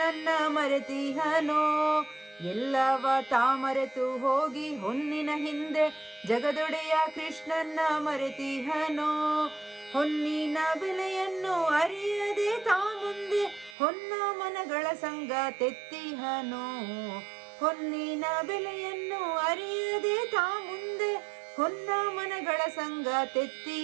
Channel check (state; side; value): drops out; left; at 13.8 s